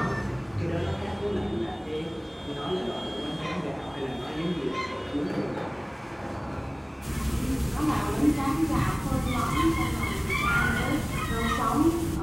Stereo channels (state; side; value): identical; both; correlation 1.00